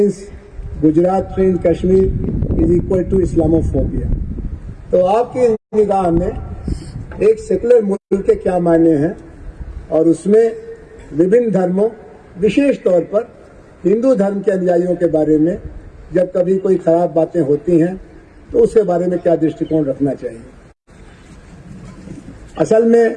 Gujarat train Kashmir is equal to Islamophobia। तो आपकी निगाह में एक secular मुल्क के क्या मायने हैं और उसमें विभिन्न धर्मों, विशेष तौर पर हिंदू धर्म के अनुयायियों के बारे में जब कभी कोई खराब बातें होती हैं तो उसके बारे में क्या दृष्टिकोण रखना चाहिए? असल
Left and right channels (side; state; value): both; identical; correlation 1.00